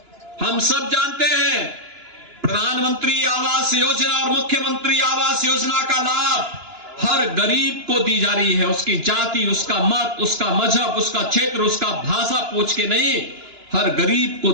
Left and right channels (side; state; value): left; late; 2.9 ms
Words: हम सब जानते हैं प्रधानमंत्री आवास योजना और मुख्यमंत्री आवास योजना का लाभ हर गरीब को दी जा रही है। उसकी जाति, उसका मत, उसका मजहब, उसका क्षेत्र, उसका भाषा पूछ के नहीं, हर गरीब को